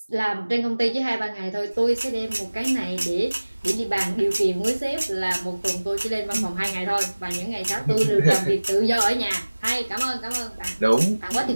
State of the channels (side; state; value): both; inverted; correlation -1.00